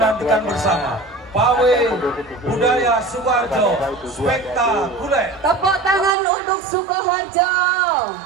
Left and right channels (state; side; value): drops out; left; at 6.2 s